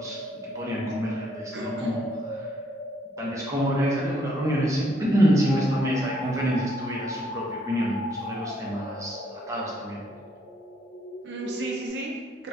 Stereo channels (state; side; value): normal; both; correlation 0.69